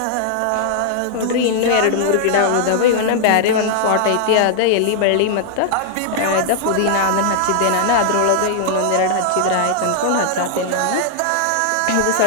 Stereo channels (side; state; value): both; different; correlation -0.01